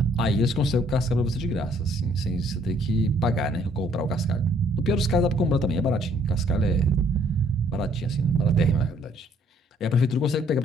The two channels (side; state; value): both; normal; correlation 0.64